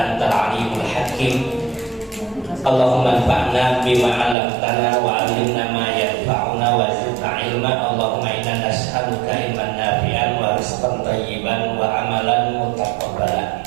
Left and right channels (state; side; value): drops out; left; at 4.4 s